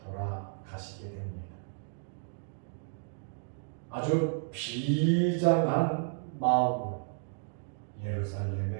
돌아가시게 됩니다. 아주 비장한 마음으로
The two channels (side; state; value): left; silent; digital silence